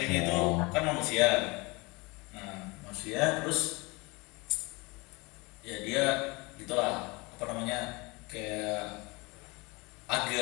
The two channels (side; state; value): right; quieter; 25.8 dB